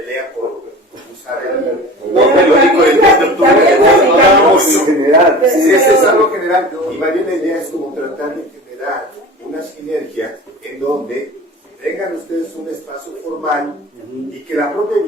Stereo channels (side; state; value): both; normal; correlation 0.37